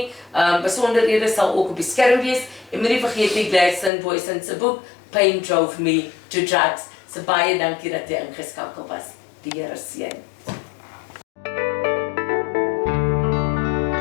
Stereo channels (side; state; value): right; drops out; at 3.9 s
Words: Besonderhede sal ook op die skerm wees en moenie vergeet nie Gladstone Boysen se boek Pain Drove Me to Drugs. So baie dankie dat jy ingeskakel was. Die Here seën.